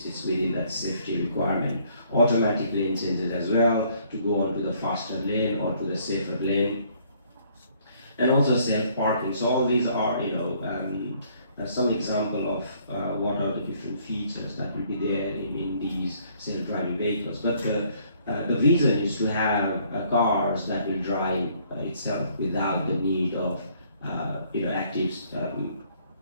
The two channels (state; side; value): inverted; both; correlation -0.64